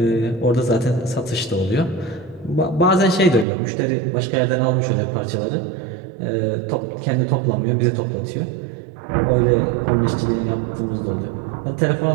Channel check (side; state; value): left; drops out; at 3.5 s